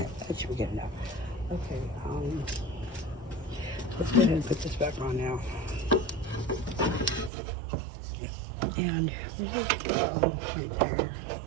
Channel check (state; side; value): drops out; left; at 7.3 s